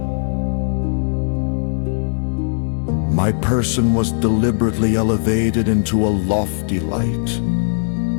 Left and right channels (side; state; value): right; silent; 64 dB below the other